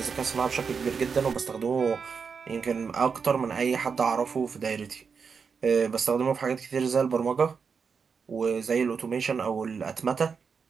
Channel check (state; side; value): quieter; left; 5.8 dB